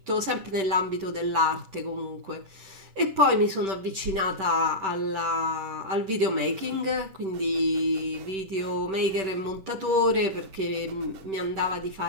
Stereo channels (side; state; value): left; late; 10 ms